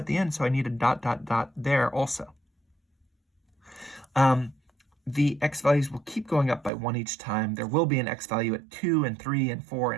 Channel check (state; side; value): drops out; left; at 6.7 s